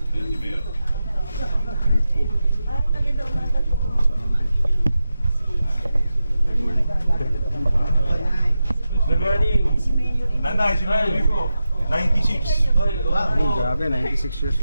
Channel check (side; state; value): both; inverted; correlation -0.90